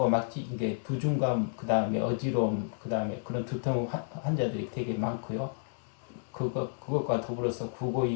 막 이게 두중감, 그 다음에 어지러움, 그 다음에 그런 두통 환자들이 되게 많고요. 그것과 더불어서 구고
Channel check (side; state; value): right; silent; digital silence